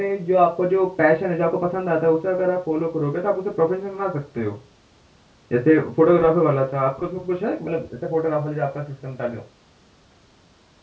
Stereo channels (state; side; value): identical; both; correlation 1.00